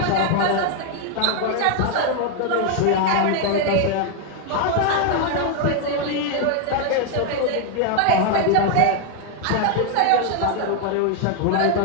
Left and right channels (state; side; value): different; both; correlation 0.01